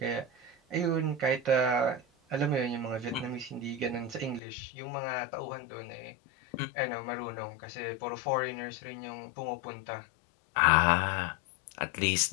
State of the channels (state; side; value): drops out; right; at 4.4 s